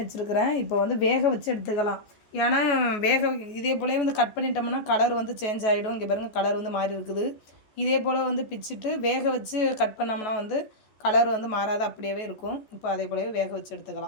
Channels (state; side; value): late; right; 14 ms